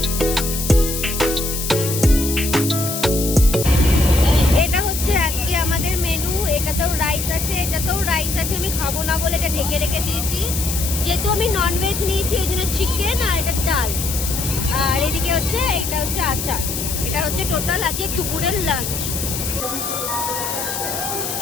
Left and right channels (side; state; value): left; noise; hiss, 4 dB below the sound